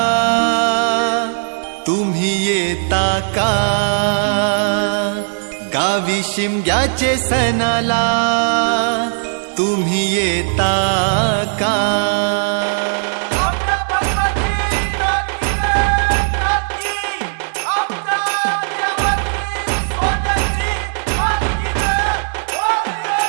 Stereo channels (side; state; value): left; silent; 65 dB below the other